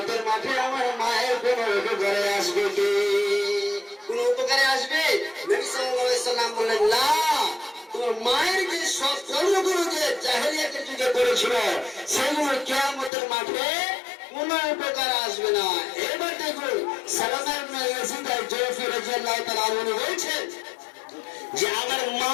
মাঠে আমার মায়ের কোনো উপকারে আসবে কি? কোন উপকারে আসবে? নবী সাল্লাল্লাহু আলাইহি ওয়াসাল্লাম বললেন, না, তোমার মায়ের যে সব কর্মগুলো যে জাহেলিয়াতের যুগে করেছিল সেগুলো কিয়ামতের মাঠে কোনো উপকার আসবে না। এবার দেখুন, সালামা ইবনে ইয়াজিদ আল-জুফি রাদিয়াল্লাহু তাআলা আনহু বলেছেন যে আমার মা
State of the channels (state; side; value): drops out; right; at 13.1 s